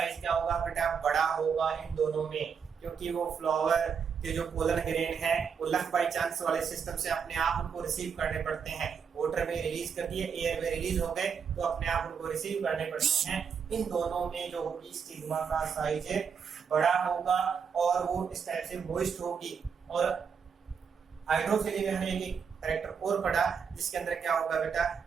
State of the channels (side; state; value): left; quieter; 6.5 dB